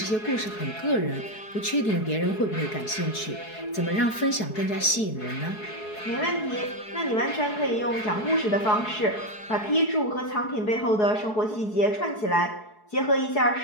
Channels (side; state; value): right; late; 4.7 ms